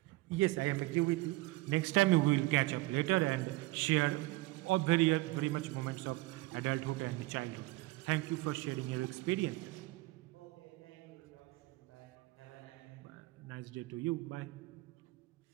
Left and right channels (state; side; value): quieter; left; 20.6 dB